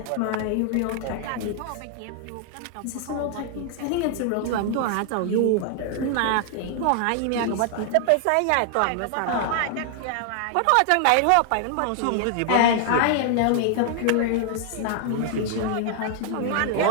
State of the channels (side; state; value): both; different; correlation 0.00